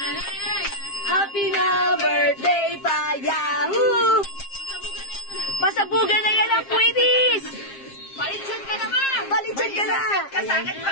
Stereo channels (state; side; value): late; right; 7.5 ms